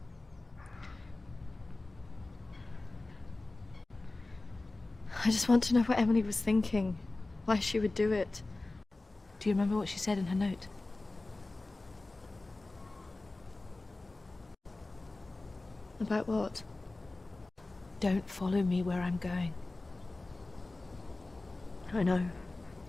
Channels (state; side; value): quieter; right; 3.1 dB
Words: I just want to know what Emily was thinking, why she would do it. Do you remember what she said in her note? About what? Don't follow me where I'm going. I know.